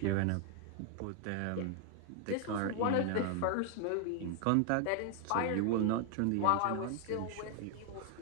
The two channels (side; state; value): both; different; correlation 0.00